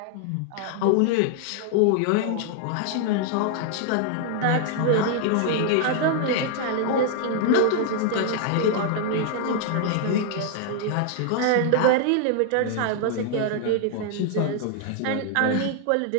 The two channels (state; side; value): different; both; correlation 0.00